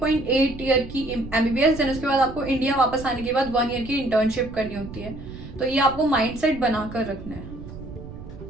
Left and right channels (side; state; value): right; noise; rumble, 13 dB below the sound